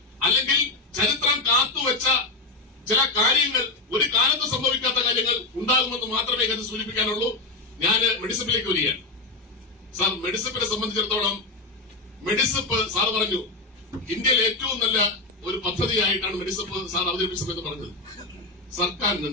അല്ലെങ്കിൽ ചരിത്രം കാത്തുവെച്ച ചില കാര്യങ്ങൾ, ഒരു കാലത്ത് സംഭവിക്കാത്ത കാര്യങ്ങൾ ഉണ്ടാകുമെന്ന് മാത്രമേ ഇത് സൂചിപ്പിക്കാനുള്ളൂ. ഞാൻ മെഡിസിപ്പിലേക്ക് വരികയാണ്. സാർ, മെഡിസിപ്പിനെ സംബന്ധിച്ചിടത്തോളം മെഡിസിപ്പ് സാർ പറഞ്ഞു ഇന്ത്യയിൽ ഏറ്റവും നല്ല ഒരു പദ്ധതിയായിട്ടാണ് മെഡിസിപ്പ് സാർ അവതരിപ്പിച്ചതെന്ന് പറഞ്ഞത്. സർക്കാരിന്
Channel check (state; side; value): quieter; right; 3.3 dB